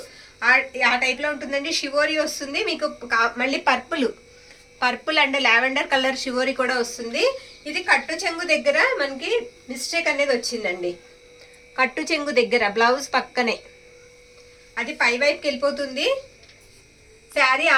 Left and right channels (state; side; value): identical; both; correlation 1.00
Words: ఆ టైప్ లో ఉంటుందండి. షివోరి వస్తుంది మీకు. మళ్ళీ purple and lavender colour shibori కూడా వస్తుంది. ఇది కట్టు చెంగు దగ్గర మనకి మిస్టేక్ అనేది వచ్చిందండి. కట్టు చెంగు దగ్గర బ్లౌజ్ పక్కనే అది పై వైపుకి వెళ్ళిపోతుంది. శారీ